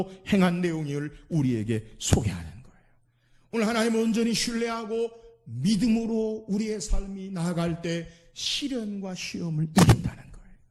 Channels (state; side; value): identical; both; correlation 1.00